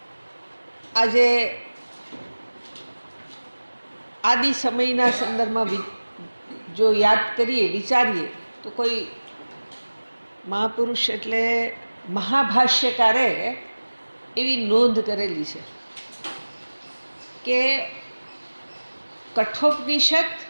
આજે આદિ સમયના સંદર્ભમાં જો યાદ કરીએ, વિચારીએ તો કોઈ મહાપુરુષ એટલે મહાભાષ્યકારે એવી નોંધ કરેલી છે કે કઠોપનિષદ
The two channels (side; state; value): both; inverted; correlation -1.00